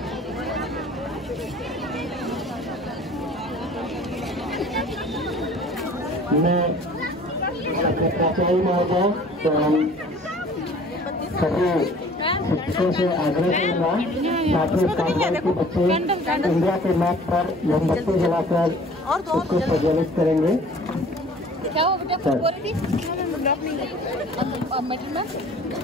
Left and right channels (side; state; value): both; normal; correlation 0.49